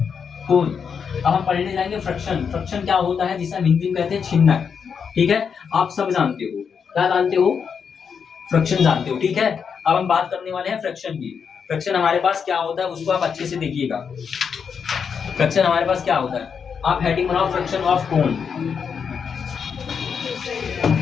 कोन। अब हम पढ़ने जाएंगे फ्रैक्शन। फ्रैक्शन क्या होता है, जिसे हम हिंदी में कहते हैं छिन्नक। ठीक है, आप सब जानते हो, क्या जानते हो, फ्रैक्शन जानते हो। ठीक है, अब हम बात करने वाले हैं फ्रैक्शन की। फ्रैक्शन हमारे पास क्या होता है उसको आप अच्छे से देखिएगा। फ्रैक्शन हमारे पास क्या होता है, आप हेडिंग बनाओ फ्रैक्शन ऑफ कोन,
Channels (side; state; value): right; quieter; 6.6 dB